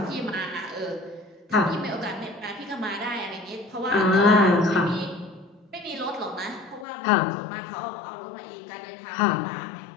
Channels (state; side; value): drops out; right; at 6.9 s